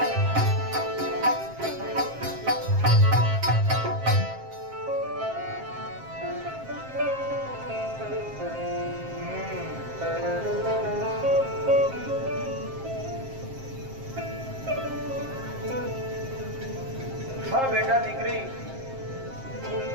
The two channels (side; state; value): left; late; 7.5 ms